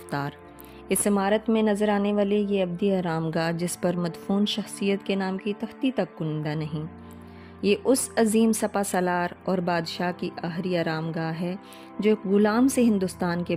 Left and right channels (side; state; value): both; identical; correlation 1.00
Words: اس عمارت میں نظر آنے والے یہ ابدی آرام گاہ جس پر مدفون شخصیت کے نام کی تختی تک کنندہ نہیں، یہ اس عظیم سپا سالار اور بادشاہ کی آخری آرام گاہ ہے جو ایک غلام سے ہندوستان کے